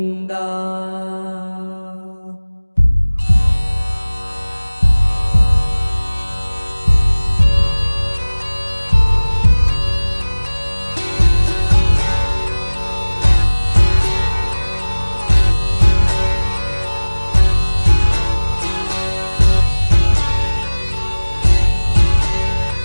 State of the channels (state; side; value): inverted; both; correlation -1.00